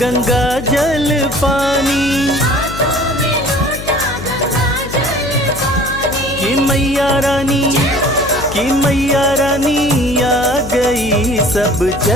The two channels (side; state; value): left; noise; hum, 10 dB below the sound